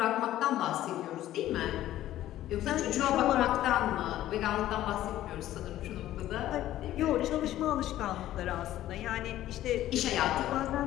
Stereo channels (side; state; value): right; quieter; 13.6 dB